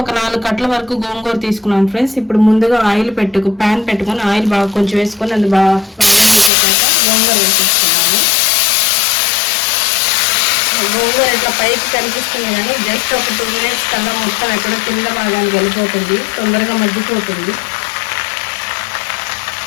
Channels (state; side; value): drops out; right; at 6.5 s